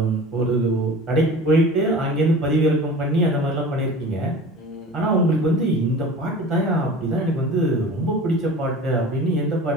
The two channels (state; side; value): normal; both; correlation 0.39